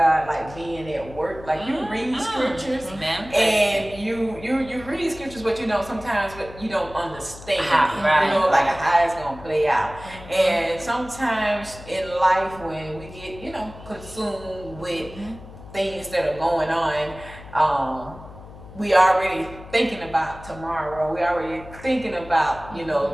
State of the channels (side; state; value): left; noise; hum, 17 dB below the sound